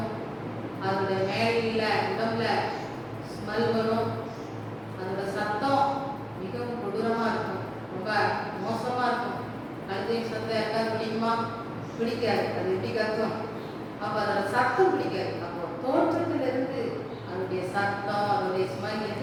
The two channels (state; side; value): identical; both; correlation 1.00